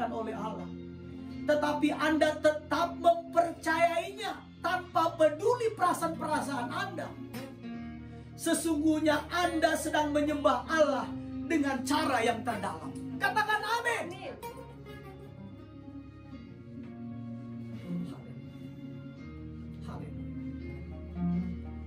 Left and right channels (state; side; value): identical; both; correlation 1.00